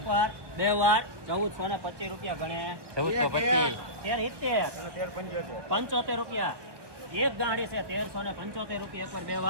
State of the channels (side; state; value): left; late; 1.2 ms